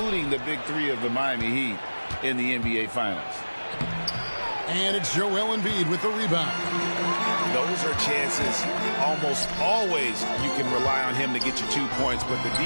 the big three of the Miami Heat in the NBA Finals. And it's Joel Embiid with the rebound. Those are chances almost always you can rely on him to get you 2 points, but the D,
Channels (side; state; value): both; inverted; correlation -1.00